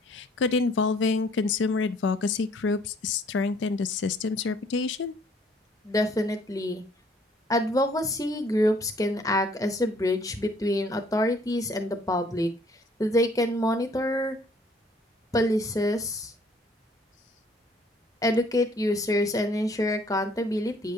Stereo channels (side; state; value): both; normal; correlation 0.60